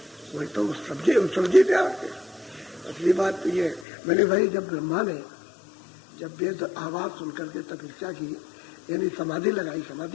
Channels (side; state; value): right; drops out; at 3.9 s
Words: वही तो समझे क्या असली बात तो ये। मैंने भाई जब ब्रह्मा ने जब वेद आवाज सुनकर के तपस्या की, यानी समाधि लगाई,